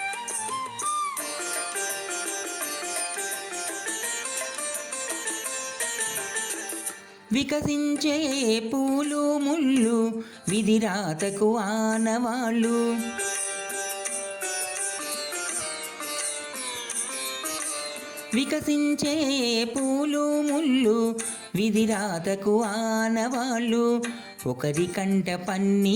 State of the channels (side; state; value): both; identical; correlation 1.00